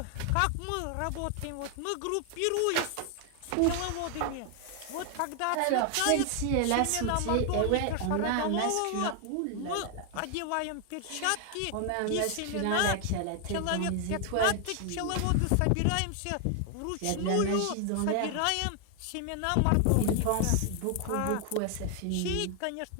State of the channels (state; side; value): different; both; correlation 0.00